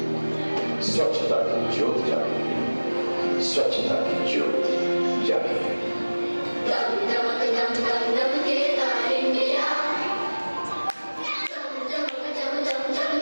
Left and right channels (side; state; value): both; inverted; correlation -1.00